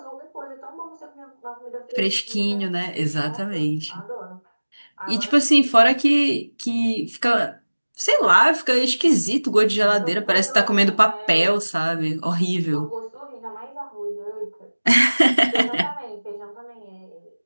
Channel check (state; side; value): inverted; both; correlation -1.00